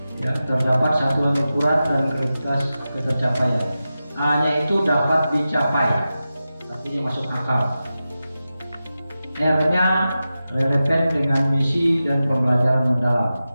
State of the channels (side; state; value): both; inverted; correlation -0.93